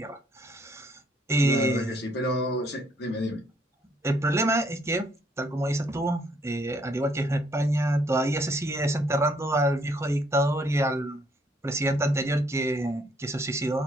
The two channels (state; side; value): normal; both; correlation 0.68